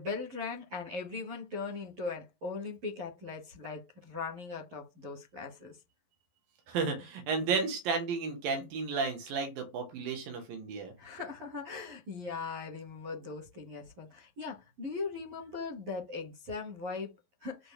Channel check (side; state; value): left; late; 11 ms